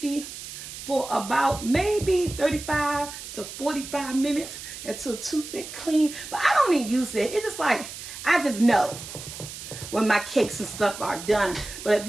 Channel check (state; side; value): noise; right; hiss, 11 dB below the sound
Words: for about maybe 35 to 45 minutes until toothpick clean. But I don't even use it. It's just like, I just know when my cakes and stuff are done. But if